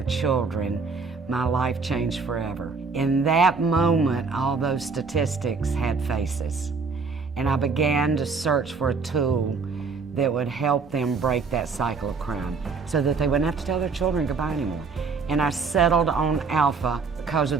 children, my life changed forever. In that moment, all those statistics had faces. And I began to search for a tool that would help them break that cycle of crime so that they wouldn't have to tell their children goodbye anymore. And I settled on Alpha because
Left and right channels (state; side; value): quieter; left; 4.7 dB